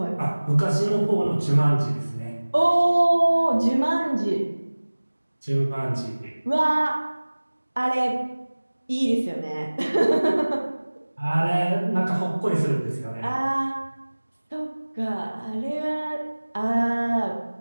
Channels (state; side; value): inverted; both; correlation -1.00